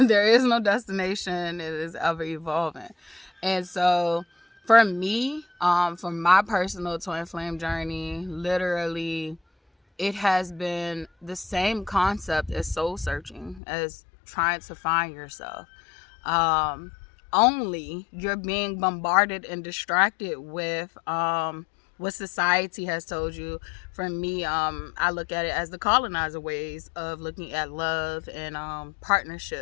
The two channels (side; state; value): right; drops out; at 13.6 s